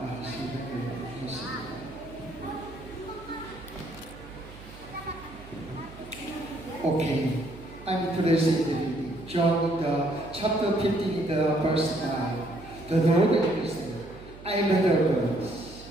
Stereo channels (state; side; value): noise; right; hum, 18 dB below the sound